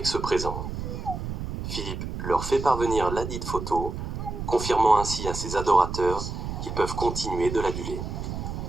ce présent. Philippe leur fait parvenir ladite photo, confirmant ainsi à ses adorateurs qu'ils peuvent continuer de l'aduler.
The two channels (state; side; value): noise; right; rumble, 5 dB below the sound